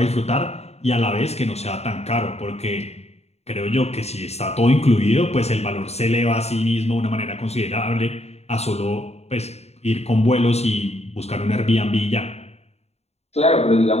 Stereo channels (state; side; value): late; right; 0.31 ms